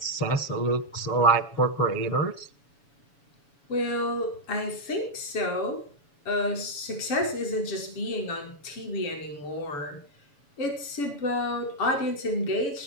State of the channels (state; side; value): late; right; 7.0 ms